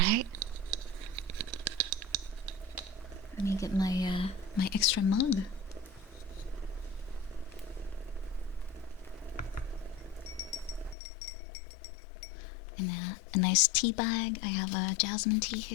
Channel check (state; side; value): drops out; right; at 11.0 s